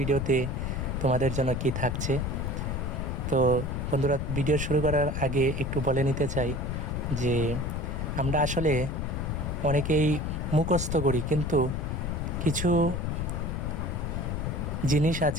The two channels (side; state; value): left; noise; rumble, 2 dB below the sound